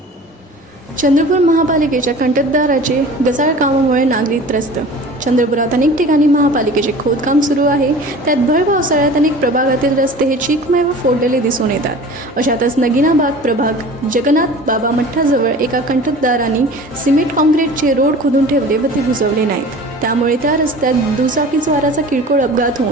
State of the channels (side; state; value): both; normal; correlation 0.41